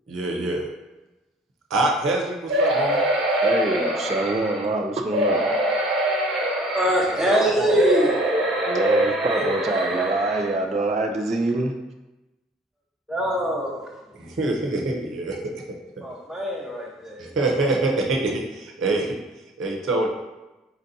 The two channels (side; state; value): both; normal; correlation 0.50